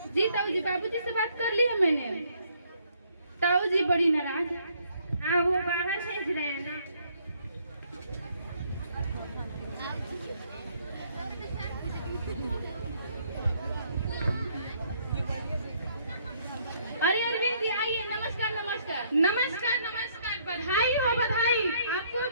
जी ताऊ जी, बाबूजी से बात कर ली है मैंने। ताऊ जी बड़ी नाराज। हाँ वो बाहर भेज रहे हैं ना। अरे अरविंद जी आइए, नमस्कार नमस्कार। नमस्कार नमस्कार, बधाई हो बधाई। आपको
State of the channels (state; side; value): inverted; both; correlation -0.67